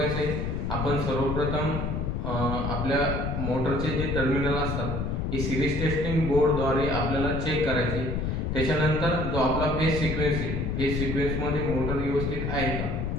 आहे। आपण सर्वप्रथम आपल्या मोटरचे जे टर्मिनल असतात हे सिरीज टेस्टिंग बोर्डद्वारे आपल्याला चेक करायचे। त्याच्यानंतर जो आपला फेज सिक्वेन्स आहे, फेज सिक्वेन्स मध्ये मोटर व्यवस्थित आहे का,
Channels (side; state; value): left; noise; rumble, 1 dB below the sound